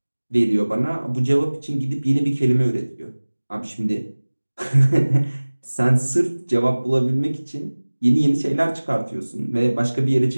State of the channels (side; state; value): both; inverted; correlation -1.00